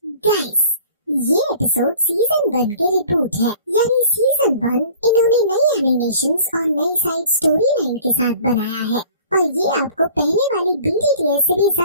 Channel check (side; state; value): both; inverted; correlation -0.48